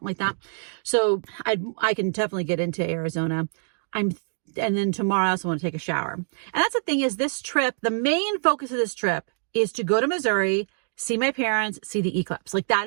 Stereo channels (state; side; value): silent; left; digital silence